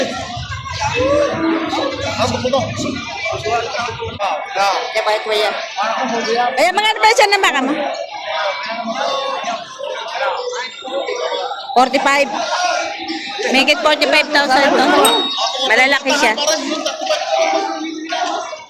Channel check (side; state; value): both; identical; correlation 1.00